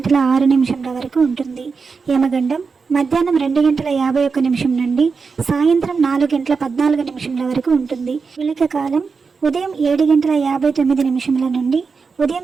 వరకు ఉంటుంది. యమగండం మధ్యాహ్నం 2:51 నుండి సాయంత్రం 4:14 వరకు ఉంటుంది. విళక కాలం ఉదయం 7:59 నుండి ఉదయం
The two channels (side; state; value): left; quieter; 5.0 dB